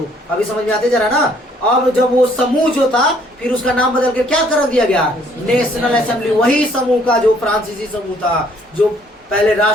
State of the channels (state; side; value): normal; both; correlation 0.63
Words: अभी समझ में आते जरा ना। अब जब वो समूह जो था, फिर उसका नाम बदल के क्या कर दिया गया? National assembly. वही समूह का जो फ्रांसीसी समूह था, जो पहले